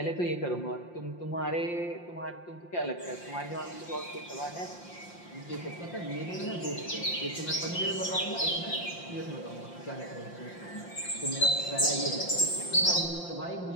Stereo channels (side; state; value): right; late; 5.7 ms